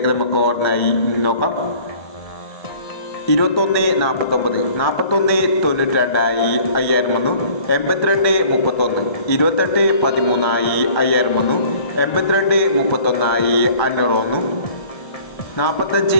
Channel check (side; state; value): right; late; 1.3 ms